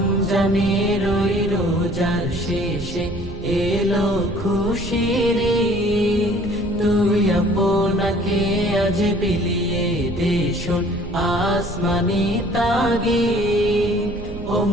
ওই রোজার শেষে এলো খুশির ঈদ। তুই আপনাকে আজ বিলিয়ে দে শোন আসমানি তাগিদ। ও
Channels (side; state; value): right; noise; rumble, 11 dB below the sound